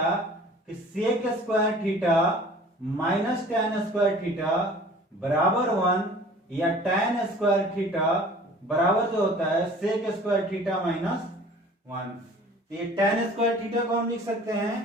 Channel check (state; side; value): normal; both; correlation 0.47